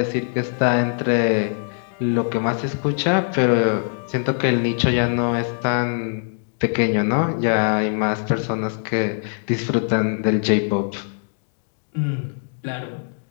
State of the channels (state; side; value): silent; right; digital silence